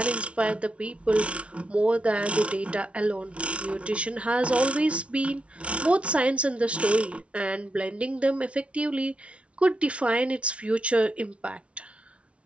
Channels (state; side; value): late; left; 0.061 ms